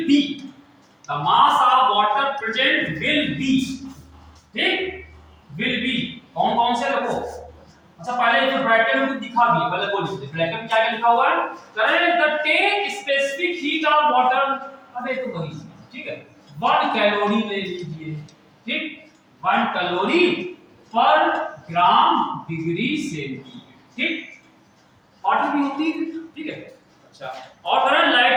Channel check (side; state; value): both; identical; correlation 1.00